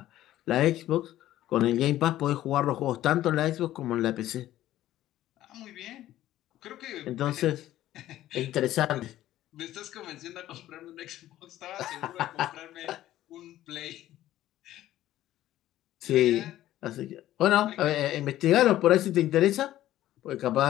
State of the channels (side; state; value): right; quieter; 13.9 dB